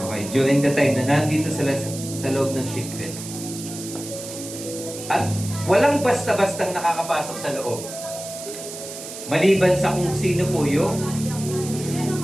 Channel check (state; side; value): noise; right; hiss, 11 dB below the sound